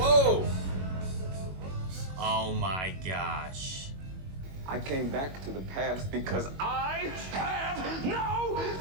Oh my gosh. I came back to the past because I have no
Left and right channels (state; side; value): late; left; 21 ms